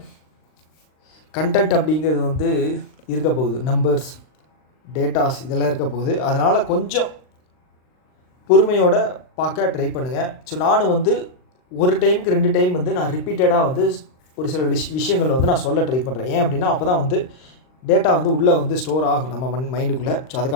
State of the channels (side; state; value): right; late; 39 ms